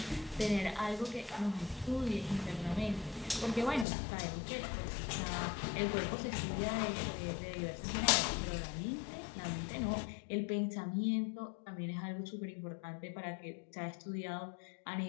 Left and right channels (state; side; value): drops out; right; at 3.9 s